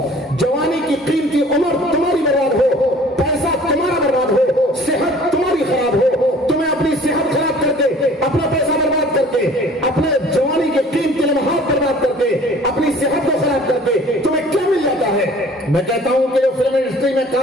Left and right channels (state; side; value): normal; both; correlation 0.50